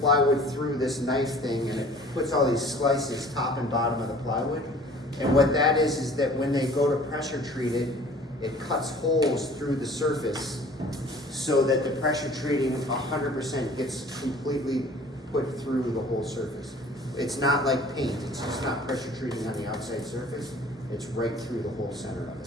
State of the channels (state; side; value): normal; both; correlation 0.49